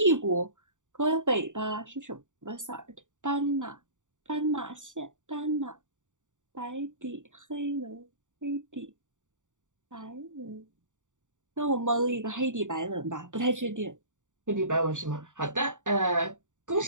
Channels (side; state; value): left; late; 0.86 ms